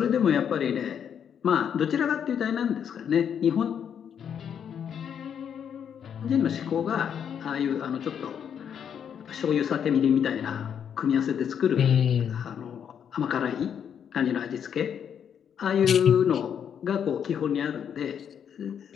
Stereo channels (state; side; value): quieter; right; 8.2 dB